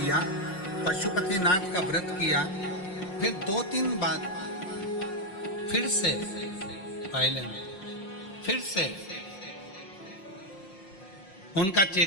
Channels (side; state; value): right; late; 5.5 ms